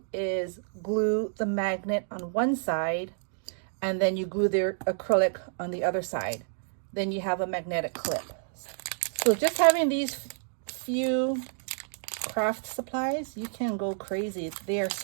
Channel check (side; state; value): left; silent; digital silence